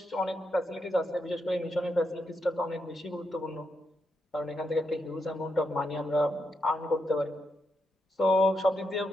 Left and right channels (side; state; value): both; normal; correlation 0.82